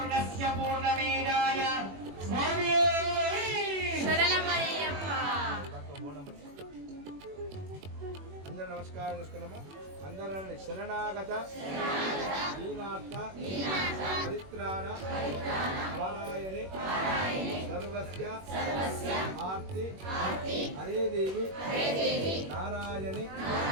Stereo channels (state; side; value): late; left; 21 ms